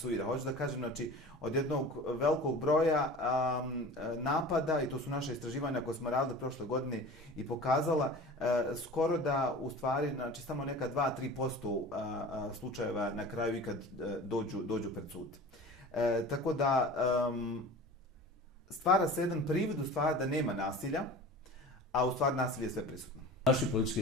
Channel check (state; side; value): normal; both; correlation 0.38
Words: Hoću da kažem, znači, od jednog velikog broja napada, i to su naše istraživanja koje smo radili prošle godine i pokazala, skoro da u stvari, znači, samo neka 2-3% slučajeva na kraju ikad dođu pred sud. Tako da stvara se jedan privid u stvari da nema nasilja, a u stvari nasilje je sve prisutno. Naši